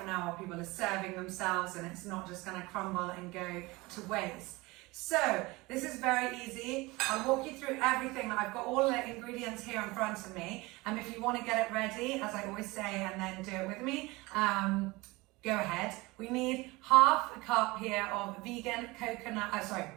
an hour people are serving themselves, and it's not just going to crumble and go to waste. So this is very easy. I'll walk you through everything. I've got all the ingredients here in front of me, and if you want to get it ready, as I always say, and then do it with me, go ahead. We need half a cup here of vegan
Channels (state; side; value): quieter; left; 22.6 dB